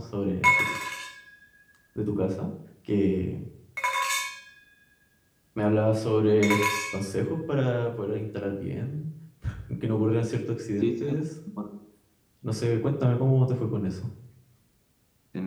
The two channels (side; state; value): both; identical; correlation 1.00